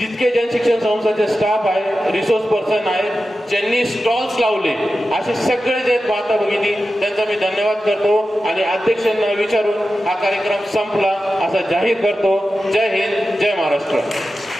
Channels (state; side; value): normal; both; correlation 0.92